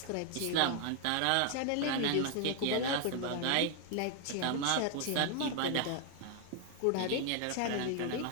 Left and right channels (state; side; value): different; both; correlation 0.00